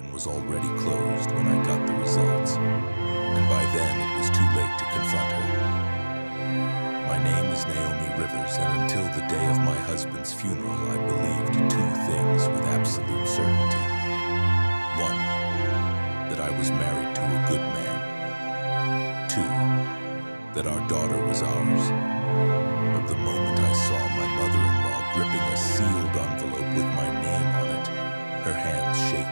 was already closed when I got the results, and by then it was too late to confront her. My name is Naomi Rivers, and until the day of my husband's funeral, I believed two things with absolute certainty. One, that I was married to a good man. Two, that our daughter was ours. But the moment I saw my mother-in-law gripping a sealed envelope with my name on it, her hands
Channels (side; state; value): both; inverted; correlation -1.00